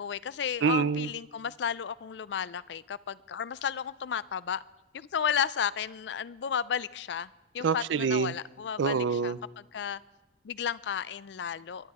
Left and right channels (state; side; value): normal; both; correlation -0.06